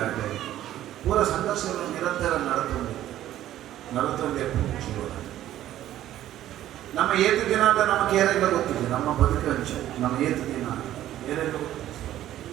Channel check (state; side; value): quieter; left; 12.9 dB